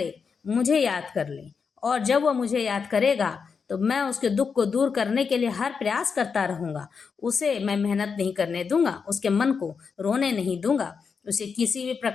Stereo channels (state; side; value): quieter; right; 5.7 dB